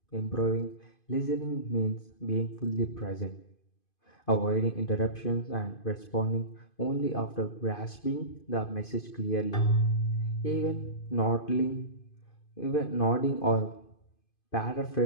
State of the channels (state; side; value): late; right; 2.5 ms